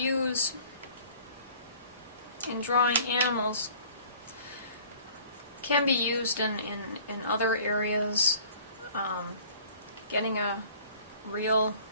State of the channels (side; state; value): both; inverted; correlation -0.50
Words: in drawing animals can be used in other areas. Getting a real